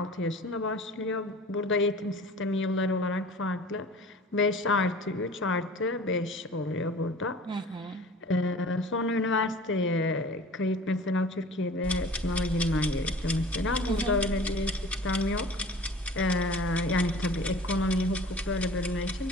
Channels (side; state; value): both; normal; correlation 0.43